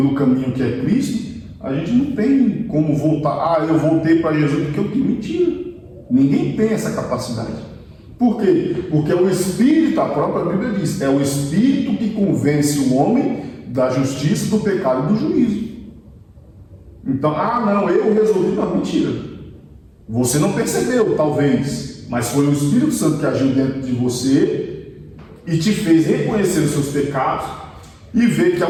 caminho que é Cristo, a gente não tem como voltar. Eu voltei para Jesus porque eu tenho. Mentira. Ninguém tem essa capacidade. Por quê? Porque é o Espírito, a própria Bíblia diz, é o Espírito que convence o homem da justiça, do pecado e do juízo. Então, não, eu resolvi. Não, mentira. Você não percebeu, talvez, mas foi o Espírito Santo que agiu dentro de você e te fez reconhecer os seus pecados e ver que a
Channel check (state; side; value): identical; both; correlation 1.00